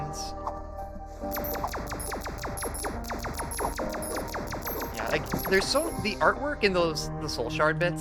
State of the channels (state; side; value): identical; both; correlation 1.00